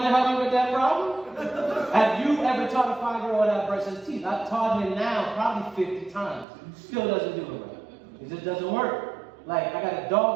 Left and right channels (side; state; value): left; drops out; at 6.5 s